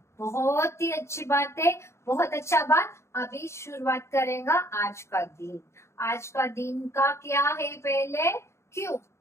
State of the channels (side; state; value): right; late; 0.13 ms